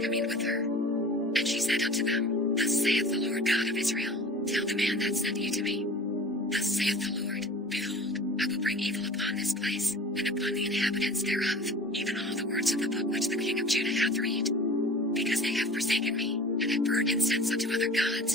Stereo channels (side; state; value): both; normal; correlation 0.41